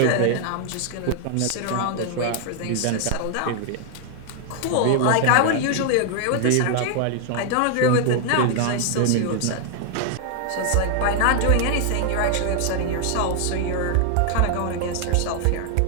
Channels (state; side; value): different; both; correlation 0.00